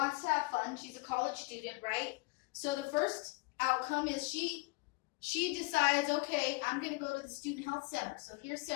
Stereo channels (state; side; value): quieter; right; 26.1 dB